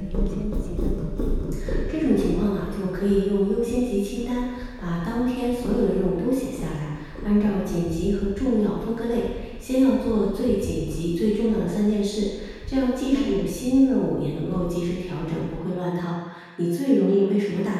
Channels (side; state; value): both; identical; correlation 1.00